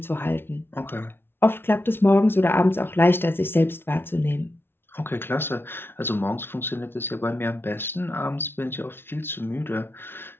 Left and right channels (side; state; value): right; late; 0.11 ms